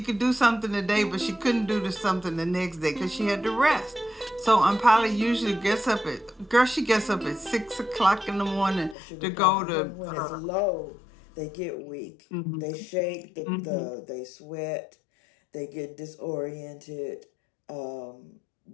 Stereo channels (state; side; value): drops out; right; at 9.0 s